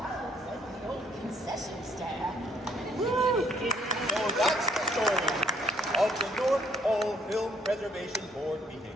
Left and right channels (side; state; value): both; normal; correlation 0.65